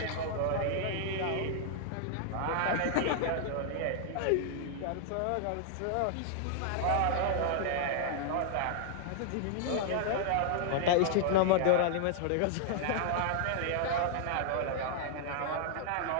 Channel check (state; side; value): different; both; correlation -0.01